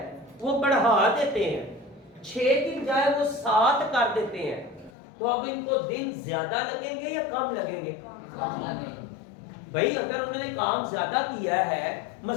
वो बढ़ा देते हैं, 6 की बजाय वो 7 कर देते हैं, तो अब इनको दिन ज्यादा लगेंगे या कम लगेंगे? कम लगेंगे। भाई अगर उन्होंने काम ज्यादा किया है,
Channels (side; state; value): right; drops out; at 4.9 s